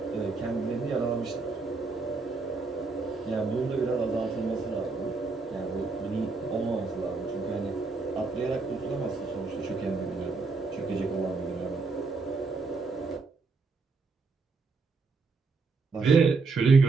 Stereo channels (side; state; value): left; quieter; 4.1 dB